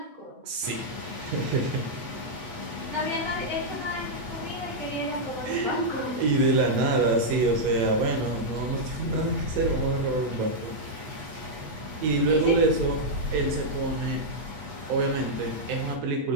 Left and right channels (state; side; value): late; left; 8.3 ms